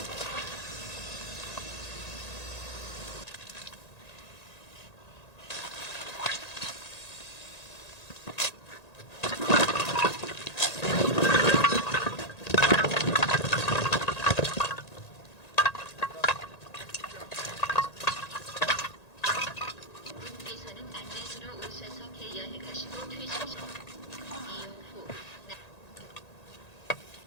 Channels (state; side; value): late; right; 1.9 ms